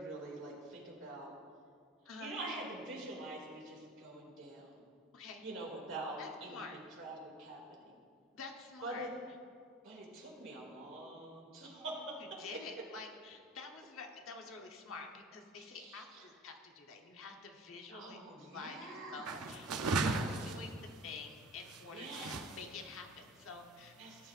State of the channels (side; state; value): both; normal; correlation 0.40